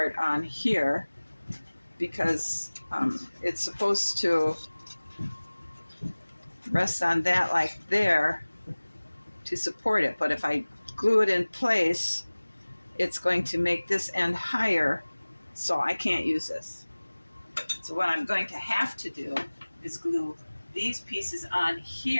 on here because it's supposed to rest on that like there to support it. But if I glue it in place, it's going to make this end higher, so I can't use this. So what I'm going to have to do is glue these pieces on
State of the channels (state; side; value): inverted; both; correlation -1.00